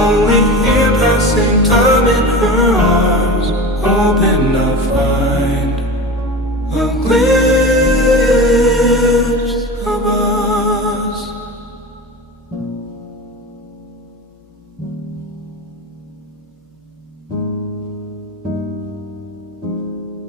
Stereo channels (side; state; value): both; normal; correlation 0.30